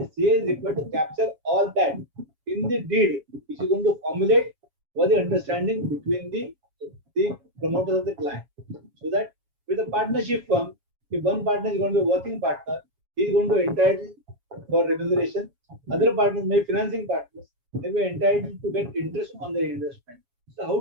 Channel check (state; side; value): late; left; 7.2 ms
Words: CA is required to capture all that in the deed, which is going to formulate what the understanding between the promoters of the client. So that with a partnership firm, if one partner is going to be a working partner, he is going to entitle for remuneration. Other partners, may financing partners, they will entitled to get interest on their investment. So how